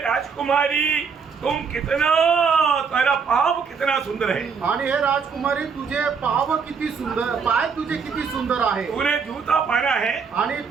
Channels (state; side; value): quieter; left; 5.8 dB